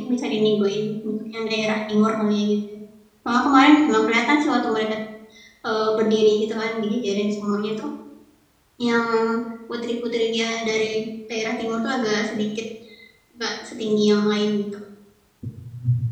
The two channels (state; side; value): identical; both; correlation 1.00